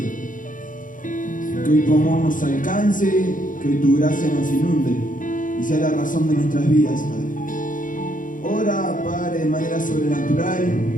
Que hoy tu amor nos alcance, que hoy tu gracia nos inunde y sea la razón de nuestras vidas, Padre. Ora, Padre, de manera sobrenatural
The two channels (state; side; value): late; right; 0.38 ms